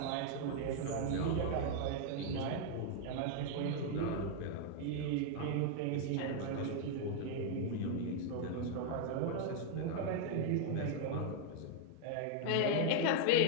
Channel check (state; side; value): different; both; correlation 0.00